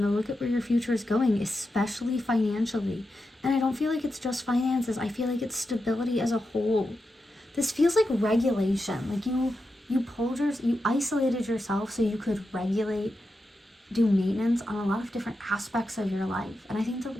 to look at where your future is going, especially financially. And I don't feel like it's just finances. I feel like it's stability as a whole. This feels like regulation. Like you isolated yourself so you could regulate, do maintenance on a lot of different aspects of your life. And I think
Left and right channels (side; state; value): both; normal; correlation 0.89